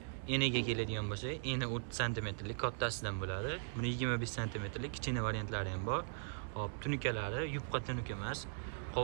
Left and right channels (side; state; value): left; silent; digital silence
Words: eniga keladigan bo'lsa, eni 30 sm lik kattasidan bo'ladi. Buni 25 sm lik kichkina variantlari ham bor. Hop, tunukalari yupqa tunuka emas,